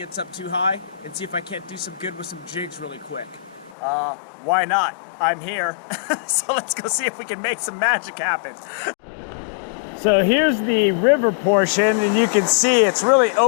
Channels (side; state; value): right; drops out; at 3.8 s